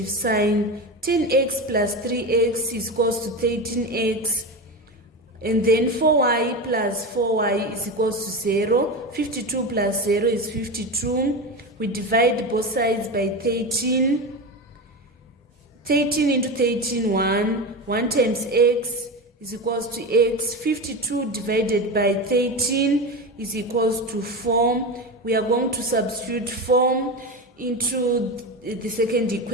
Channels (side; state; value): both; normal; correlation 0.21